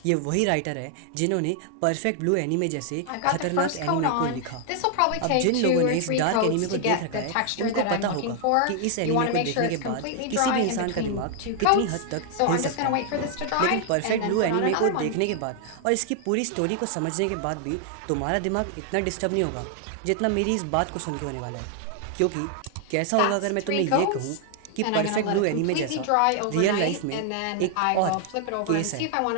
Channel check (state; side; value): different; both; correlation 0.00